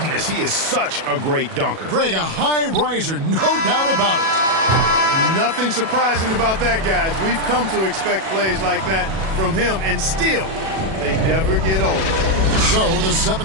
he is such a great dunker. Greg, a high riser, no doubt about it. Nothing surprising about that, guys. We've come to expect plays like that from him, and still, they never get old. So the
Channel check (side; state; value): left; late; 37 ms